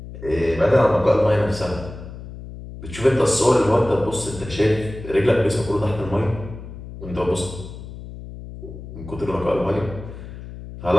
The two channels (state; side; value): noise; left; hum, 12 dB below the sound